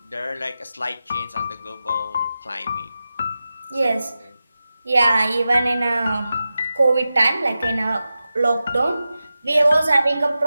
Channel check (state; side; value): inverted; both; correlation -0.93